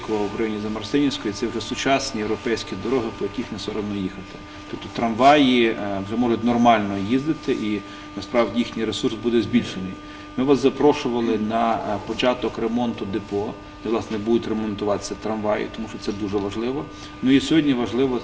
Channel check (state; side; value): identical; both; correlation 1.00